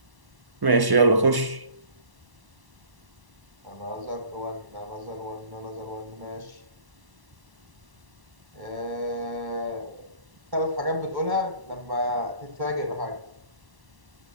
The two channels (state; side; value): late; left; 1.1 ms